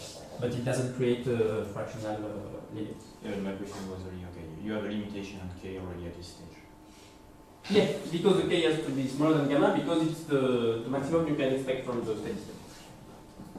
but it doesn't create a fractional limit. Yeah, my question was really okay. You have a limitation on k already at this stage. Yeah, because the k has to be smaller than gamma, because it's the maximum you can expect from the steady state.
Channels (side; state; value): both; identical; correlation 1.00